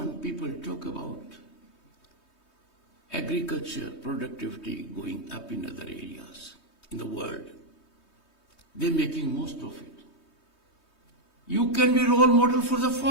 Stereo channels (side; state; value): right; late; 3.2 ms